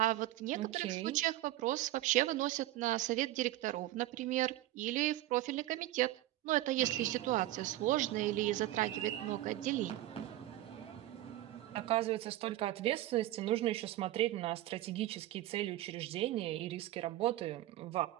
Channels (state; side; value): quieter; left; 15.3 dB